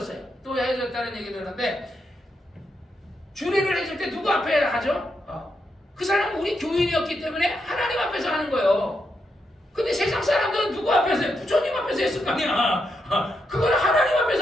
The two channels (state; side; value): normal; both; correlation 0.82